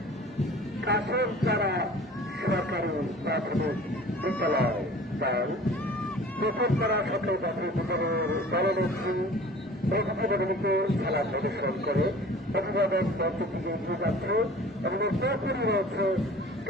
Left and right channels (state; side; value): normal; both; correlation 0.45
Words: কাছের পাড়া সরকারি প্রাথমিক বিদ্যালয় দল। নতুন পাড়া সরকারি প্রাথমিক বিদ্যালয়ের দলনেত্রী প্রতিযোগিতাগুলিকে খেলা প্রদর্শন করে অভিভাবক দলটি থেকে এগিয়ে যাচ্ছে এবং এরপরই রয়েছে